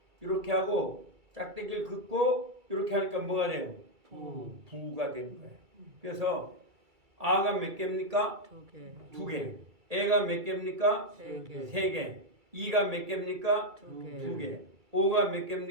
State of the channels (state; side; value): late; left; 2.3 ms